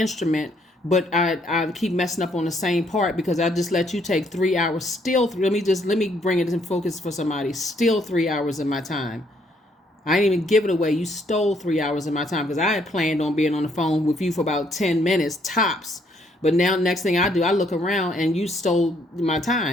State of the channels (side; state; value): both; normal; correlation 0.69